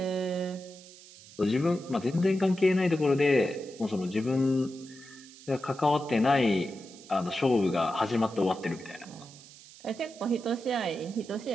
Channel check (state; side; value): noise; right; hiss, 20 dB below the sound